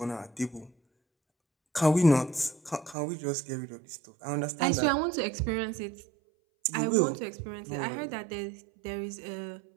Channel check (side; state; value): left; drops out; at 3.0 s